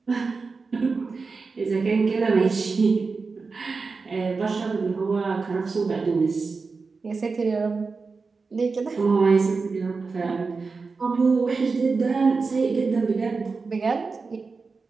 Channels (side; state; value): left; quieter; 4.4 dB